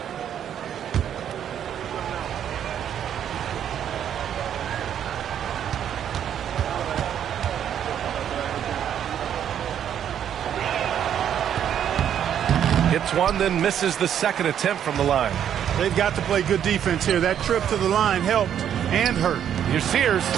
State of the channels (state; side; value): quieter; left; 9.5 dB